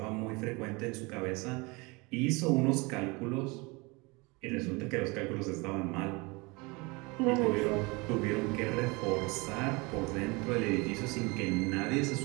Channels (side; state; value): left; quieter; 26.4 dB